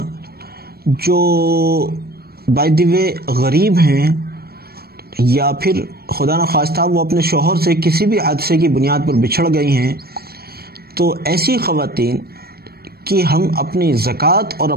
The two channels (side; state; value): left; late; 0.45 ms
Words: जो बाय द वे गरीब हैं या फिर खुदा न खास्ता वो अपने शौहर से किसी भी हादसे की बुनियाद पर बिछड़ गई हैं, तो ऐसी ख़वातीन कि हम अपनी ज़कात और